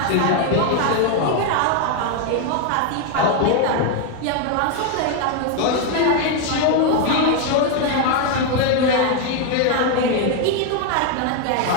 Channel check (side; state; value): both; different; correlation 0.01